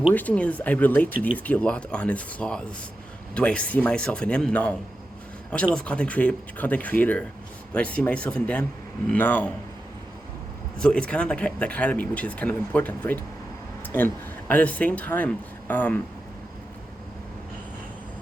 thing is I relate to DSP a lot on his flaws. Do I see myself in him? No. I watch a lot of content creator. Do I see myself in them? No. So it's kind of like the dichotomy, which is kind of important, right? And at the same time, I'm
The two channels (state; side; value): normal; both; correlation 0.90